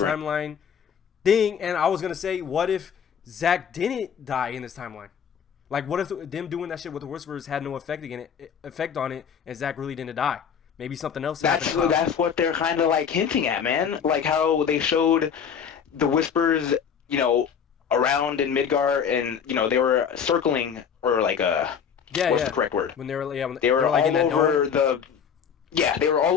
thing. And I was gonna say, what if Zack didn't die in this timeline? Like, what if them doing that shit with the Whispers had no effect on it, and Zack really didn't die? Maybe something else happened. That's what they're kind of like hinting at, man. Like how they showed the Whispers, you know, around in Midgar, and you know they were circling, or like what's the correct word? When they were they were like all over the Yeah, they were all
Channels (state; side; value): quieter; right; 7.4 dB